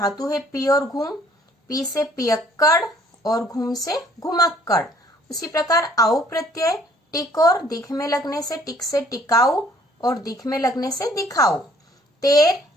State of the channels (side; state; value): both; normal; correlation 0.60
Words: है पी और घूम, पी से पियक्कड़ और घूम से घुमक्कड़। उसी प्रकार आउ प्रत्यय टिक और दिख में लगने से टिक से टिकाऊ, और दिख में लगने से दिखाऊ। तेर,